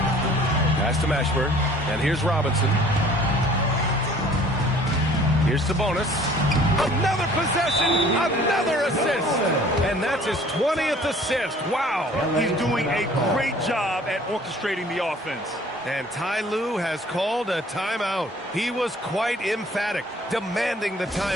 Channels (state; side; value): normal; both; correlation 0.52